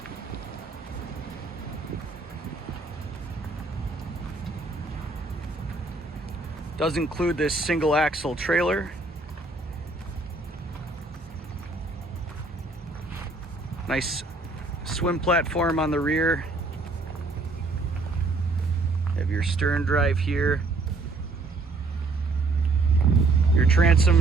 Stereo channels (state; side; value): quieter; left; 3.4 dB